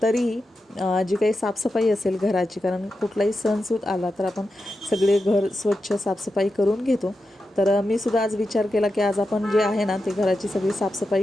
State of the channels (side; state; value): both; normal; correlation 0.89